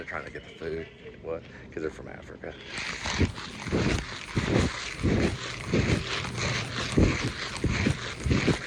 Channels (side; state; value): both; identical; correlation 1.00